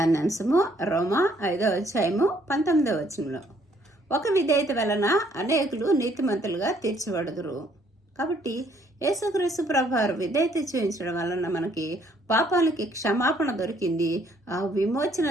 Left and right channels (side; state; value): both; normal; correlation 0.65